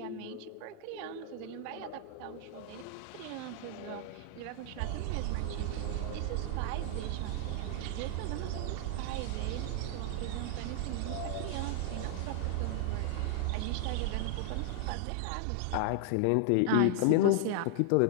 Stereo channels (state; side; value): different; both; correlation 0.00